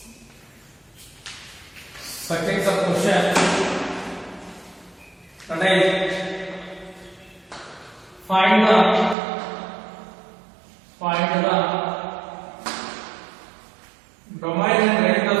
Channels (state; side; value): drops out; left; at 9.2 s